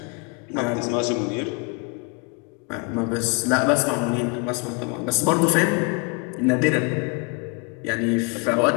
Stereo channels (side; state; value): right; quieter; 30.7 dB